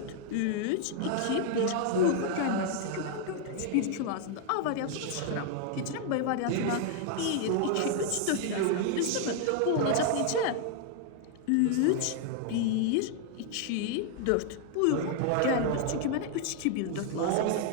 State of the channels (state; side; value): different; both; correlation 0.00